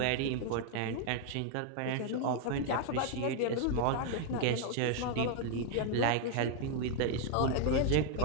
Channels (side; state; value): both; different; correlation 0.00